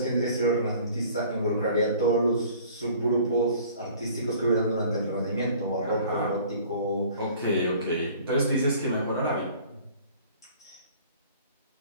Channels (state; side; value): inverted; both; correlation -0.50